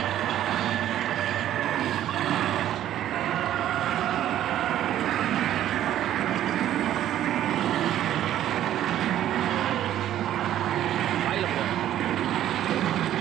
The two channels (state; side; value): quieter; left; 12.0 dB